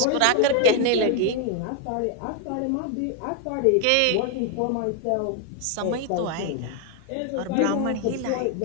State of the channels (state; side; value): different; both; correlation 0.00